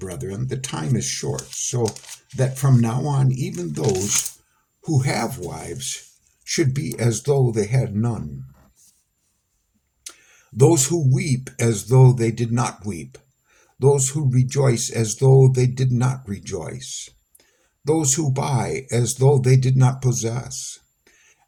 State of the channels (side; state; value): both; identical; correlation 1.00